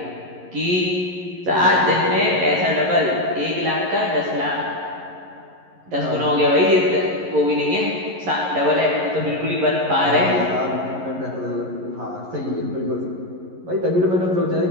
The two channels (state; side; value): late; left; 11 ms